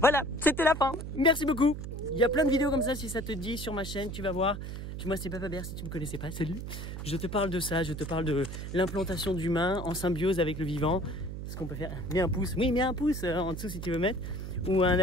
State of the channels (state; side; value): noise; right; hum, 7 dB below the sound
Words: Voilà, c'était la fin. Merci beaucoup. Il y a plein de vidéos comme ça si ça te dit sur ma chaîne, tu vas voir. Moi c'est Baba Bear si tu ne me connaissais pas, salut. Je te parle de ça, je te parle de l'implantation d'humains en symbiose avec le vivant. Ce qu'on peut faire, mets un pouce, oui mets un pouce en dessous si tu veux mettre, ou un